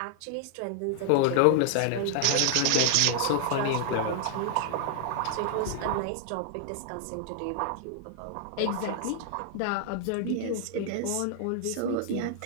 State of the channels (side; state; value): both; different; correlation 0.00